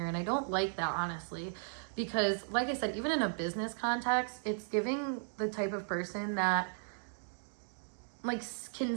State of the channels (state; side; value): silent; left; digital silence